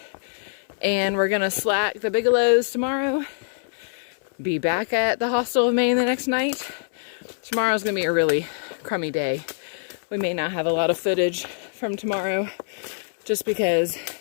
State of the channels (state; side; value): silent; right; 62 dB below the other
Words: And we're gonna slack the Bigelows tomorrow. Be back at the Hostel of Maine the next night. Tomorrow's gonna be a really crummy day. We may not have a lot of footage from tomorrow just because